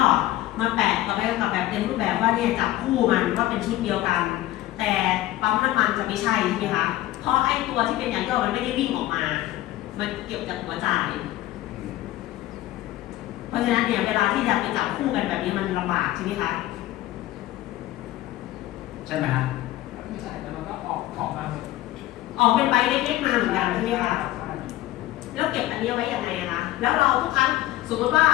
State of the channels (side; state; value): right; quieter; 15.6 dB